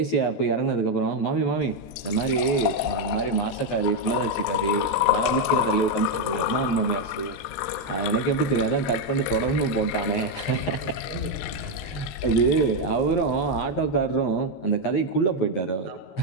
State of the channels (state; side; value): late; right; 10 ms